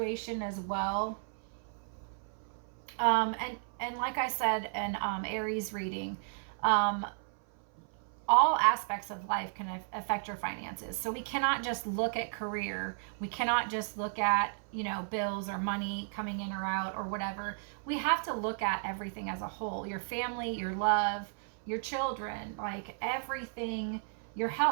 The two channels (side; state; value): left; silent; 55 dB below the other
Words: as well. And like I said in Aries reading, all aspects of life can affect your finances. So we cannot just look at career. We cannot just look at, you know, bills or money coming in or out or whatever. We have to look at everything as a whole. Your family, your love, your children, like everything, your